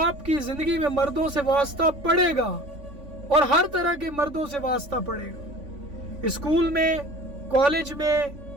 کی زندگی میں مردوں سے واسطہ پڑے گا اور ہر طرح کے مردوں سے واسطہ پڑے گا، اسکول میں، کالج میں،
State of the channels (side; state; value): left; late; 3.5 ms